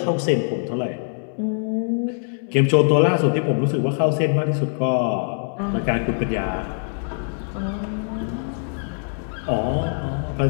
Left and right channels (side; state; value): right; silent; 64 dB below the other